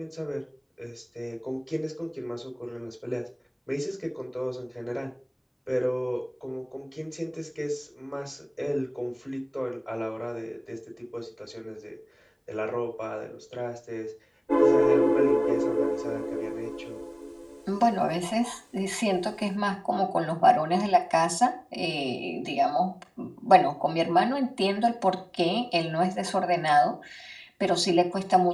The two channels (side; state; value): both; identical; correlation 1.00